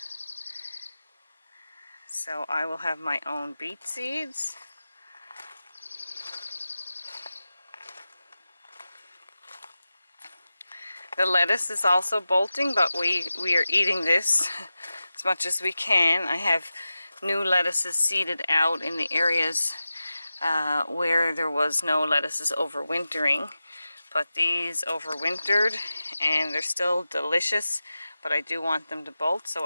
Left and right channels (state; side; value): inverted; both; correlation -0.93